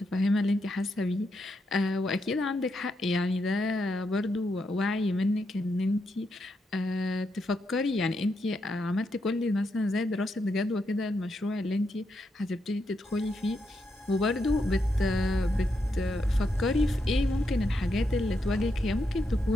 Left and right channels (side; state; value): both; normal; correlation 0.82